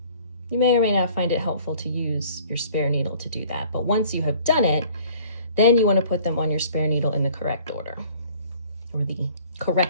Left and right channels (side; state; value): both; inverted; correlation -0.53